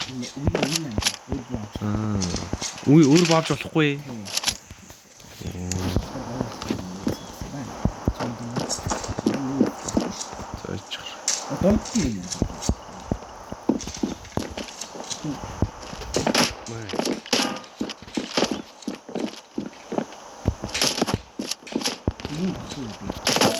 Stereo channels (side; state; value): both; identical; correlation 1.00